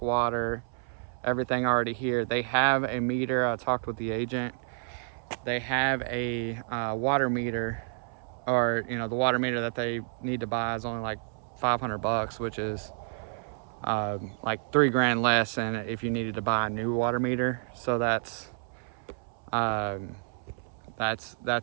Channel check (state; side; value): silent; left; 58 dB below the other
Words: water, everything already here. They have a meter. I talked with the agent. They have a water meter, or the water meter that they need to buy is only like $500, which is like $3 grand less than if you needed to buy a new water meter. So that's a